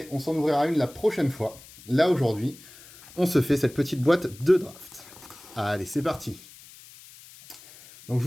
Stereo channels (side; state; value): left; noise; hiss, 21 dB below the sound